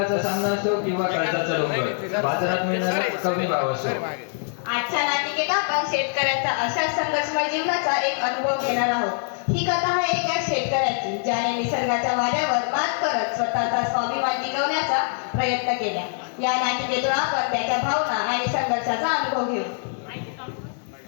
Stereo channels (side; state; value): right; silent; 60 dB below the other